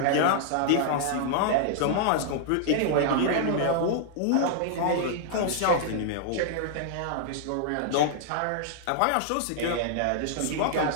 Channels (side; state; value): both; different; correlation -0.01